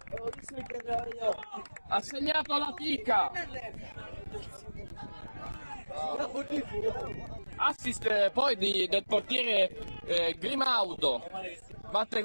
la pica, assist poi del portiere Grimaudo, batte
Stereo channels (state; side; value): inverted; both; correlation -1.00